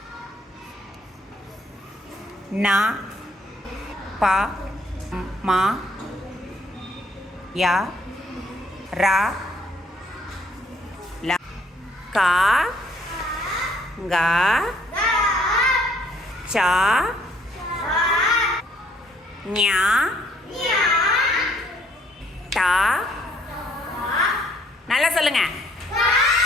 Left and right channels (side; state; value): both; normal; correlation 0.64